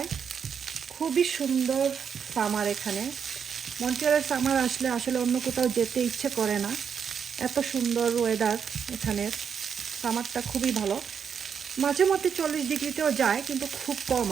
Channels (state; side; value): quieter; left; 7.1 dB